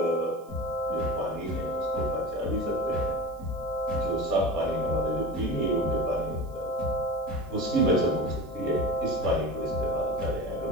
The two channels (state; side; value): noise; right; hiss, 29 dB below the sound